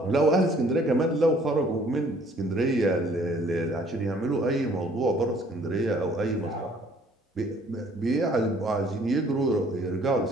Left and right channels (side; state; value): both; normal; correlation 0.58